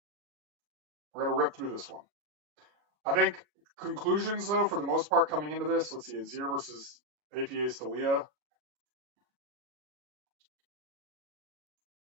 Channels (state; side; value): late; left; 22 ms